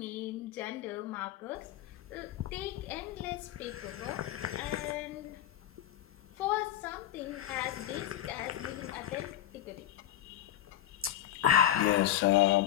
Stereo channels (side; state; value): right; quieter; 12.1 dB